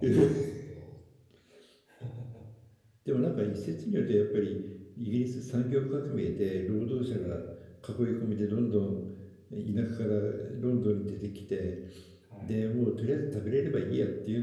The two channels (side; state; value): both; identical; correlation 1.00